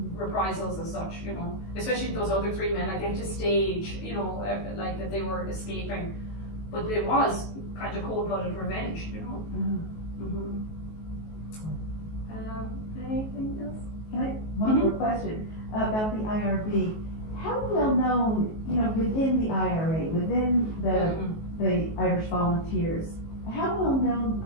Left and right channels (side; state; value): right; late; 19 ms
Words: reprisals as such, especially those other three men, like they had to stage, like that they were escaping, but it was kind of cold-blooded revenge, Anything else? Can I, one more question about the IRB. How well known, within the IRA, within the Irish Volunteers, how well known